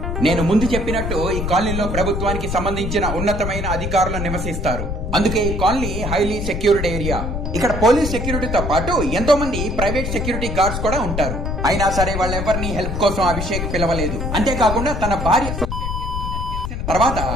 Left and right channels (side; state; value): left; noise; rumble, 3 dB below the sound